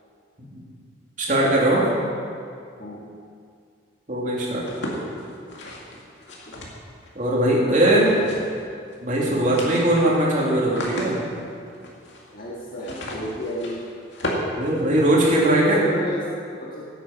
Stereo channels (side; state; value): both; normal; correlation 0.35